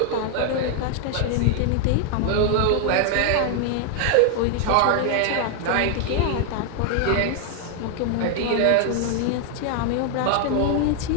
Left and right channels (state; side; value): different; both; correlation 0.00